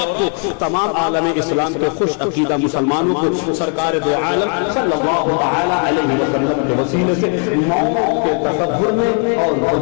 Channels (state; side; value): quieter; right; 39.7 dB